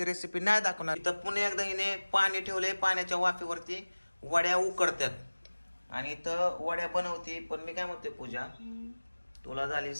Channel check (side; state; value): both; inverted; correlation -1.00